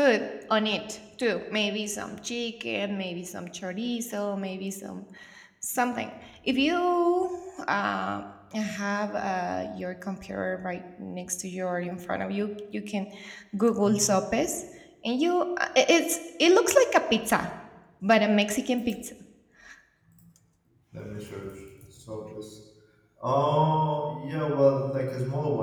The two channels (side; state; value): both; identical; correlation 1.00